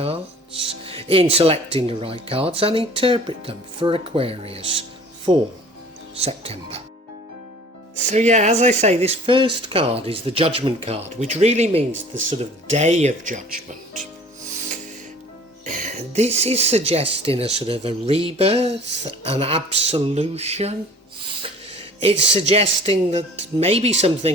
in selecting the right cards and interpret them for Aquarius for September. So yeah, as I say, this first card is the Judgement card, which really means the sort of day of judgment. This is suggesting a sort of a rebirth, an absolution. It's suggesting that maybe some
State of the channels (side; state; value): both; normal; correlation 0.47